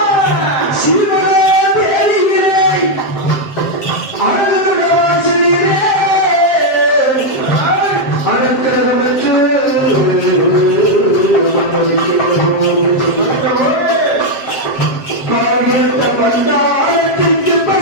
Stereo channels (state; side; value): late; right; 7.6 ms